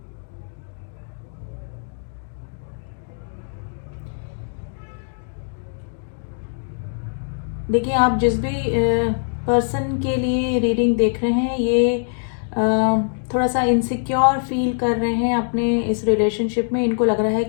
देखिए आप जिस भी पर्सन के लिए रीडिंग देख रहे हैं ये थोड़ा सा इनसिक्योर फील कर रहे हैं अपने इस रिलेशनशिप में। इनको लग रहा है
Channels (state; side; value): silent; right; digital silence